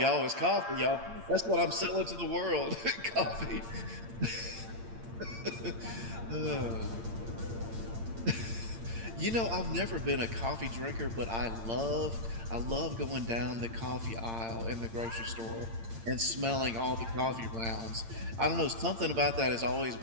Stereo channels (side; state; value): left; late; 8.8 ms